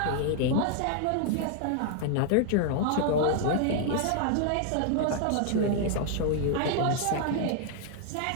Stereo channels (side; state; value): both; different; correlation 0.00